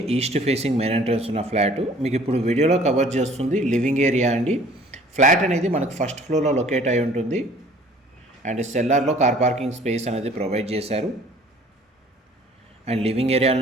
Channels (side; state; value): both; normal; correlation 0.53